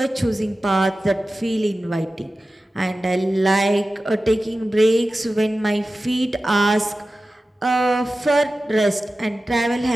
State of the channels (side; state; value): both; normal; correlation 0.95